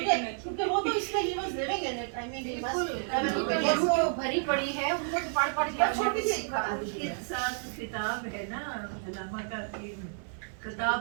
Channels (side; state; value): left; silent; 57 dB below the other